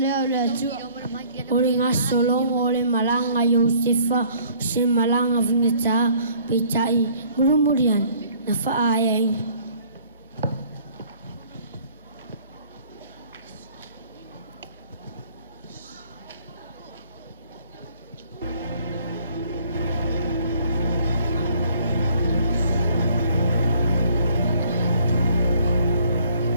le atua. O le ngā solongo o le malanga Iosefa, se malanga vingata, peitai, murumurian, na whaaiai.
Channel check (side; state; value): both; inverted; correlation -0.58